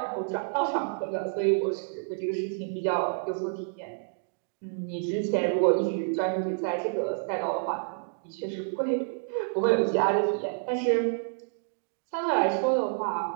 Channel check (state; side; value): silent; left; digital silence